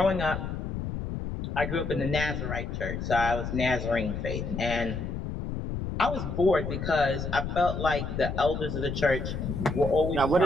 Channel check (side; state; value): left; noise; rumble, 4 dB below the sound